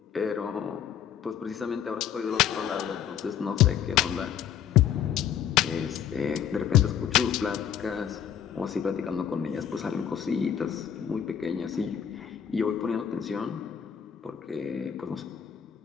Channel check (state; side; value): quieter; right; 9.2 dB